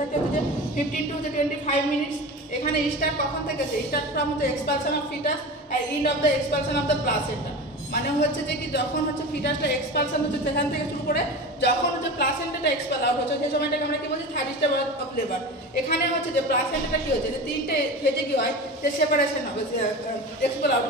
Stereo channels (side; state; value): both; normal; correlation 0.30